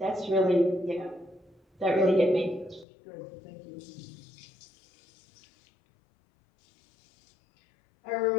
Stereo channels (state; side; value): drops out; right; at 2.9 s